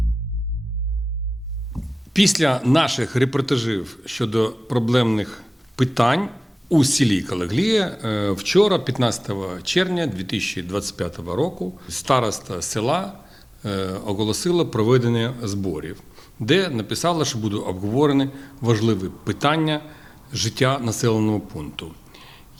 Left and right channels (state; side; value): normal; both; correlation 0.97